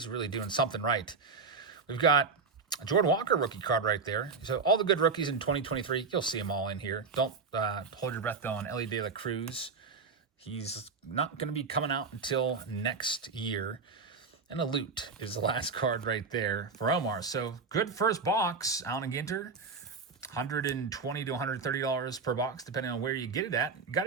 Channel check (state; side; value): quieter; left; 4.8 dB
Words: really doing something right. We've got a Jordan Walker rookie card right there. So all the good rookies in 2023, you'll see them all in here. Don't hold your breath, though, on Ellie De La Cruz. He's not going to be coming out until next year. And a loot is the last card right there for Omar. So good first box, Allen Ginter. $120 to $130 per box, depending on where you get it at. You got